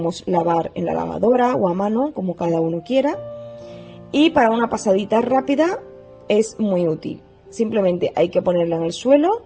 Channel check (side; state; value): both; identical; correlation 1.00